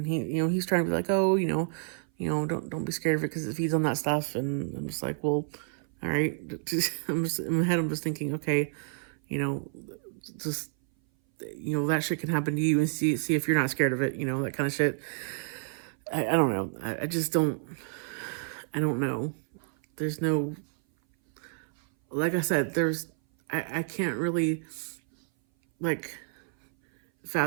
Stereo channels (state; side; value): silent; left; 57 dB below the other